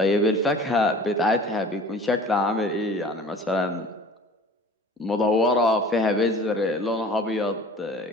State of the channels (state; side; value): normal; both; correlation 0.44